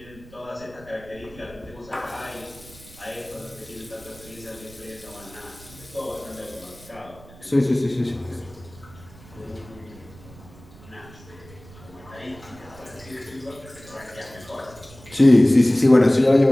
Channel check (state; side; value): noise; right; rumble, 21 dB below the sound